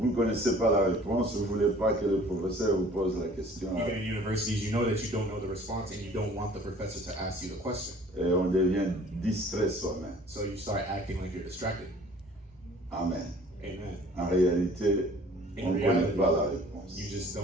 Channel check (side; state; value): both; normal; correlation 0.51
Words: ne connaissez pas la réponse, vous ne voulez pas que le professeur vous pose la question. Even in universities, you know that you don't know the response and you don't want the professor to ask you the question. Et on devient distrait soi-même. So you start acting like you're distracted. Amen. Amen. En réalité, on In ne connaît reality, pas la réponse. you just